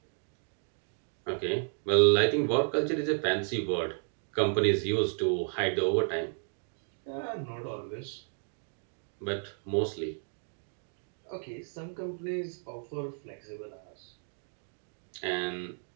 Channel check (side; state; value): left; silent; 56 dB below the other